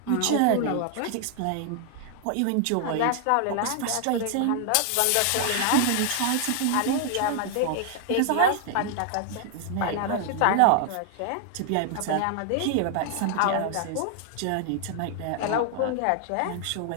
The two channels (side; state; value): both; different; correlation 0.00